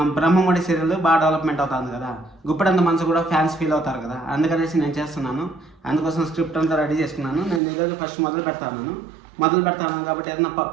బ్రహ్మముడి సీరియల్ బాగా డెవలప్మెంట్ అవుతుంది కదా, గుప్పెడంత మనసు కూడా ఫ్యాన్స్ ఫీల్ అవుతారు కదా, అందుకనేసి నేను చేస్తున్నాను. అందుకోసం స్క్రిప్ట్ అంతా రెడీ చేసుకున్నాను. నేను ఈరోజు ఫస్ట్ మొదలు పెడతాను కాబట్టి ఏదైనా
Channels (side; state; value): left; drops out; at 7.6 s